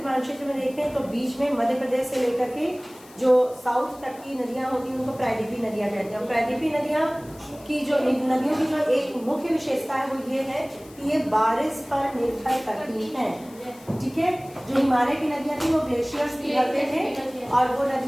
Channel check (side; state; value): left; noise; hiss, 23 dB below the sound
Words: मानचित्र में देखें तो बीच में मध्य प्रदेश से लेकर के जो साउथ तक की नदियाँ होती हैं उनको प्रायद्वीपीय नदियाँ कहते हैं। प्रायद्वीपीय नदियाँ की जो नदियों की जो एक मुख्य विशेषता है वो ये है कि ये बारिश पर निर्भर करती हैं। ठीक है, जो हिमालय की नदियाँ थी वो ग्लेशियर्स पिघलते थे और वो